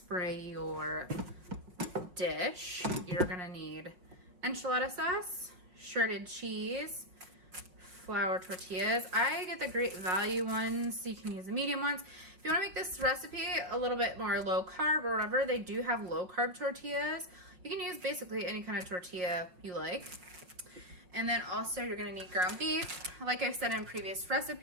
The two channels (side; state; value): left; late; 5.3 ms